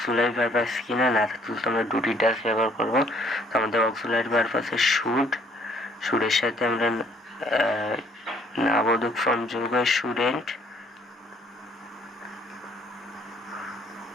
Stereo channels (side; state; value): both; normal; correlation 0.62